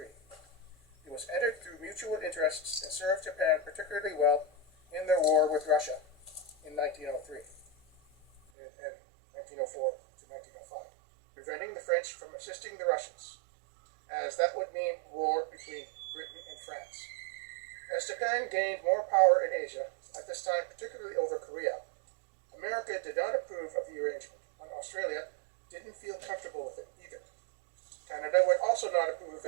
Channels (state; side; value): drops out; left; at 8.4 s